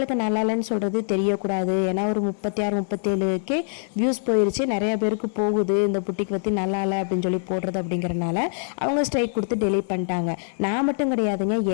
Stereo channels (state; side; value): silent; right; 58 dB below the other